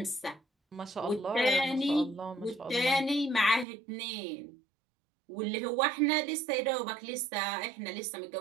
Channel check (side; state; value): left; drops out; at 3.7 s